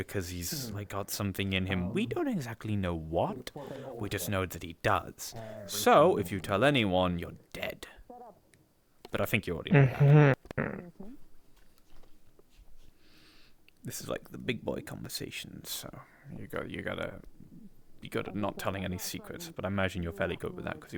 he's got something in him. We don't exactly know what. We just know that he does. So, if you tell anyone, you're dead. But I think you already know that. This is like the big boy conversations, so you gotta not telling any secrets. But I imagine you're fairly good with that because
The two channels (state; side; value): identical; both; correlation 1.00